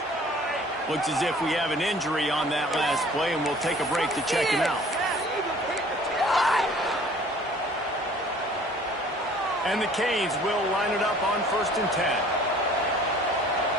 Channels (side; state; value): both; normal; correlation 0.52